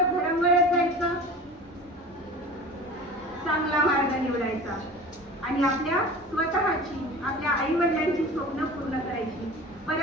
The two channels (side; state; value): both; normal; correlation 0.38